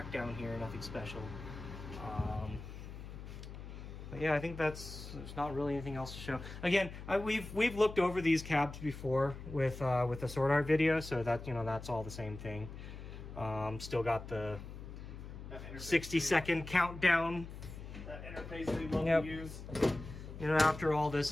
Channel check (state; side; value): noise; left; hum, 11 dB below the sound